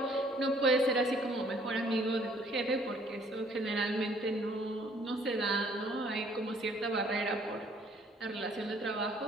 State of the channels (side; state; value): both; normal; correlation 0.61